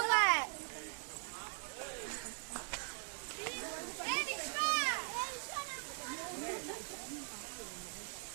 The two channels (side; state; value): left; silent; 50 dB below the other